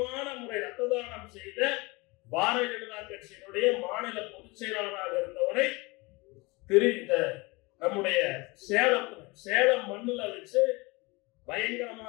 முறை ரத்த தானம் செய்த பாரதிய ஜனதா கட்சியினுடைய மாநில பொதுச் செயலாளராக இருந்தவரை நம்முடைய சேலம் மண்ணுல வச்சு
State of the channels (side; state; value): right; quieter; 25.0 dB